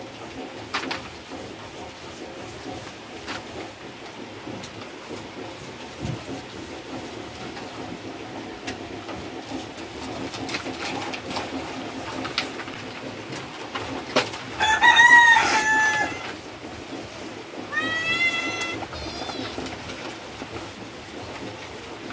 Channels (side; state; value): both; identical; correlation 1.00